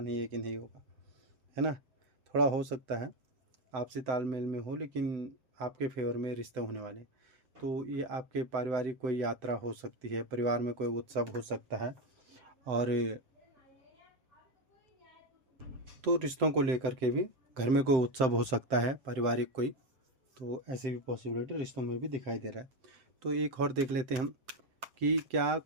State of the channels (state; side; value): late; left; 7.8 ms